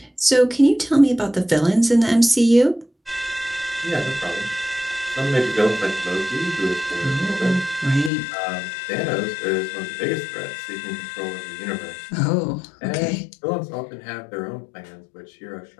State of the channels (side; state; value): right; drops out; at 8.1 s